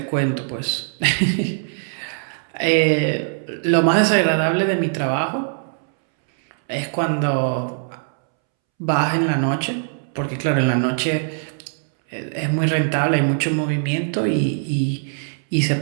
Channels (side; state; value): left; silent; 65 dB below the other